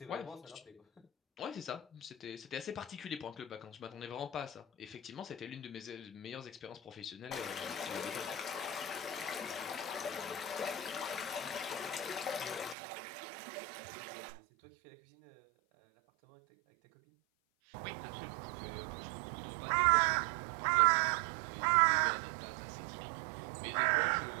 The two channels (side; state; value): left; drops out; at 12.8 s